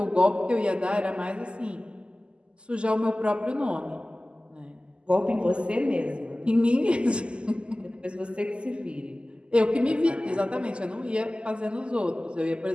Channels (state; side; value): late; left; 0.052 ms